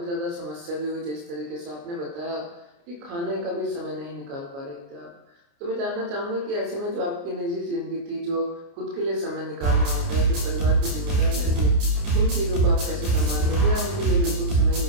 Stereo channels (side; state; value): left; late; 29 ms